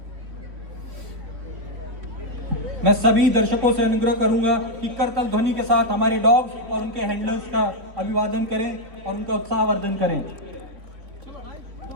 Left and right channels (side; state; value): left; late; 3.7 ms